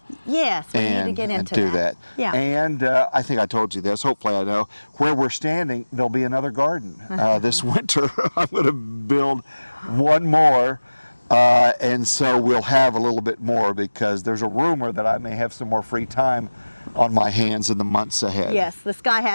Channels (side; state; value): both; inverted; correlation -1.00